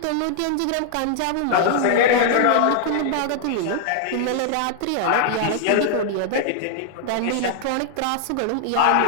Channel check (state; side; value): different; both; correlation -0.01